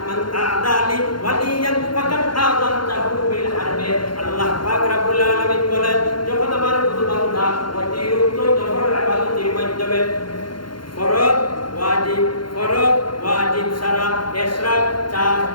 মান আ'দালি ওয়ালিয়ান ফাকাদ আযানতাহু বিল হারবি। আল্লাহ পাক রব্বুল আলামিন বলেন, যখন আমার বান্দা অতিরিক্ত জহর ইবাদতের মাধ্যমে ফরজ ওয়াজিব সারা ইশরাক চার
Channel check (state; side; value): late; right; 0.72 ms